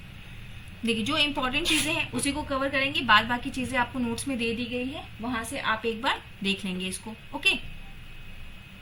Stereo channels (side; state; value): both; identical; correlation 1.00